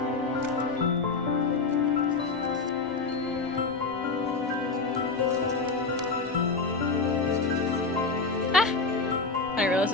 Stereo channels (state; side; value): quieter; right; 4.1 dB